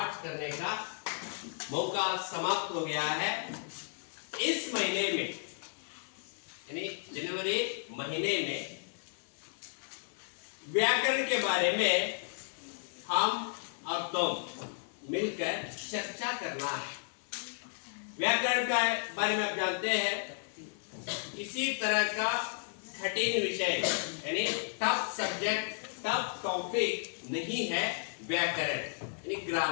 करने का मौका समाप्त हो गया है। इस महीने में यानी जनवरी महीने में व्याकरण के बारे में हम और तुम मिलकर चर्चा करना है। व्याकरण के बारे में आप जानते हैं, इसी तरह का कठिन विषय यानी टफ सब्जेक्ट, टफ टॉपिक नहीं है व्याकरण यानी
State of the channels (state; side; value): silent; right; digital silence